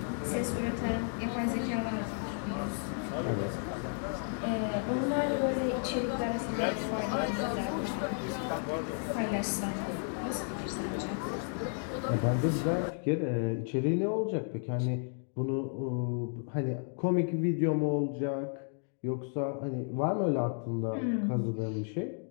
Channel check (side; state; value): right; silent; 56 dB below the other